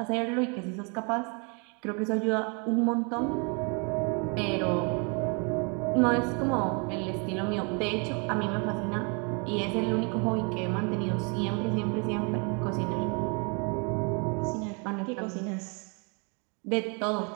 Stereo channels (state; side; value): quieter; left; 34.5 dB